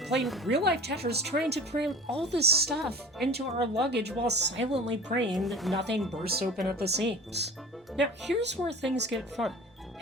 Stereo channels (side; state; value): both; normal; correlation 0.40